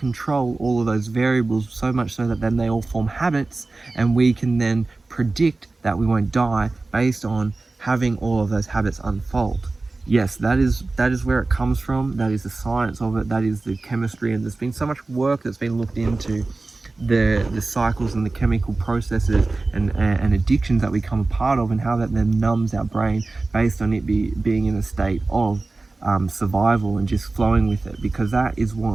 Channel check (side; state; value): left; quieter; 3.4 dB